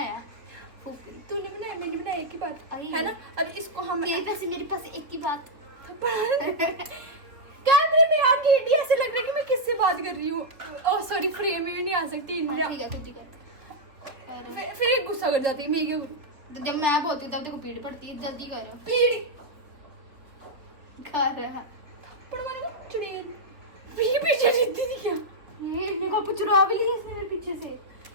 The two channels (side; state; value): left; late; 3.4 ms